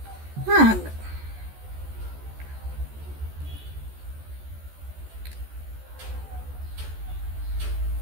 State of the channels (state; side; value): late; left; 14 ms